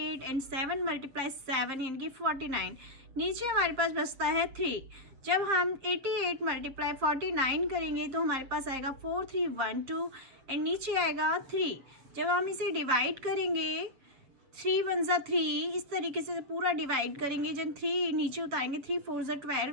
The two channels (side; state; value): left; late; 7.2 ms